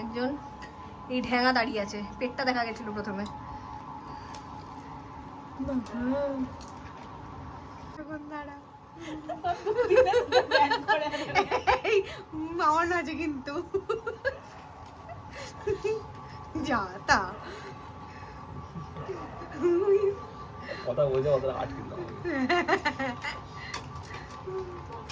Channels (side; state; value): both; identical; correlation 1.00